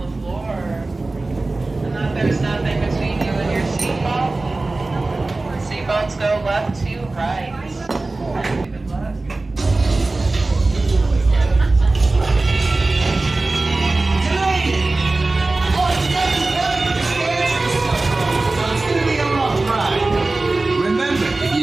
the floor and that there's nothing between you and your seatbelt. Seatbelts go left to right. Good luck. Remember, if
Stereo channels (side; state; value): left; quieter; 3.2 dB